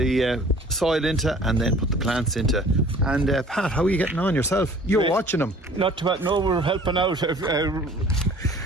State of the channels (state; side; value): normal; both; correlation 0.51